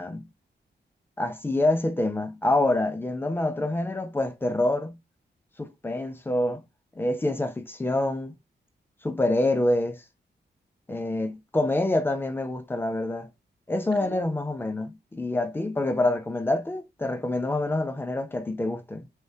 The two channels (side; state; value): both; normal; correlation 0.87